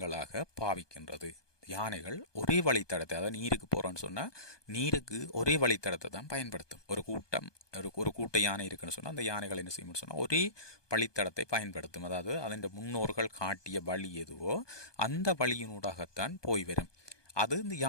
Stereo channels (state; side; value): late; right; 1.2 ms